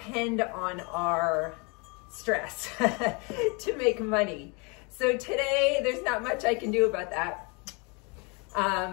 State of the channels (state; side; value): quieter; right; 31.2 dB